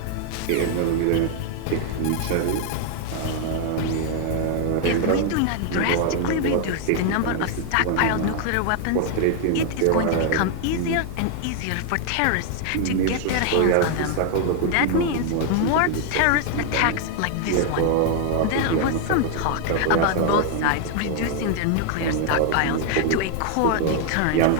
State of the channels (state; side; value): different; both; correlation 0.00